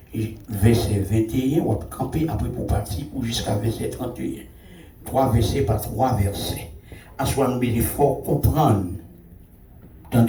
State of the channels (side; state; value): both; identical; correlation 1.00